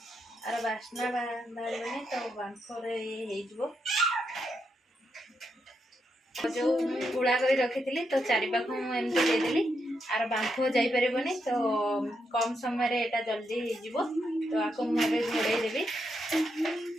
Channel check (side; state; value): both; normal; correlation 0.82